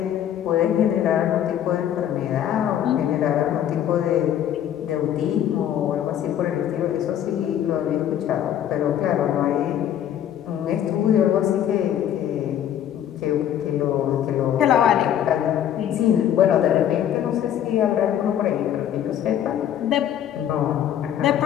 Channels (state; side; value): quieter; right; 10.5 dB